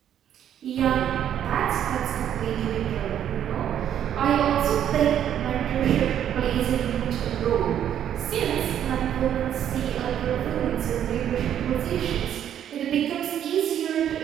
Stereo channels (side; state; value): left; quieter; 10.0 dB